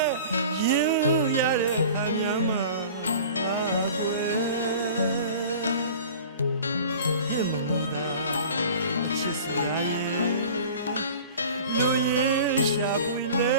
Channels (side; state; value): both; inverted; correlation -0.42